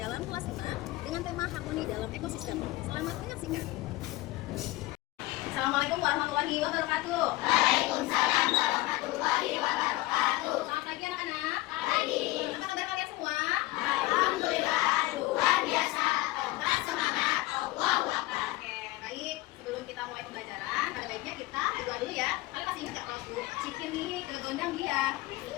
kelas 5 dengan tema harmoni dalam ekosistem. Selamat menyaksikan. Assalamualaikum warahmatullahi wabarakatuh. Waalaikumsalam warahmatullahi wabarakatuh. Selamat pagi anak-anak. Pagi. Apa kabar kalian semua? Alhamdulillah, luar biasa. Tetap semangat. Allahu Akbar. Oke, baik. Sebelum kita mulai pembelajaran, pada baiknya kita berdoa dulu ya. Kalian masih ingat gak kalau Bu Cikin nih ke gondang dia?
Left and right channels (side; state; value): right; quieter; 19.2 dB